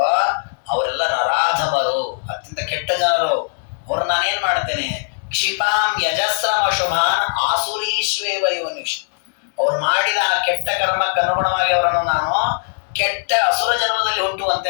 ಅವರೆಲ್ಲ ನರಾಧಮರು, ಅತ್ಯಂತ ಕೆಟ್ಟ ಜನರು. ಅವ್ರು ನಾನೇನ್ ಮಾಡ್ತೇನೆ? ಕ್ಷಿಪಾಂ ಯಜಸ್ರಮ ಶುಭಾನ್ ಆಸುರೀಶ್ವೇವ ಯೋನಿಷ್. ಅವ್ರು ಮಾಡಿದ ಆ ಕೆಟ್ಟ ಕರ್ಮಕ್ಕೆ ಅನುಗುಣವಾಗಿ ಅವರನ್ನು ನಾನು ಕೆಟ್ಟ ಅಸುರ ಜನ್ಮದಲ್ಲಿ ಹುಟ್ಟುವಂತೆ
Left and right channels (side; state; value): right; silent; digital silence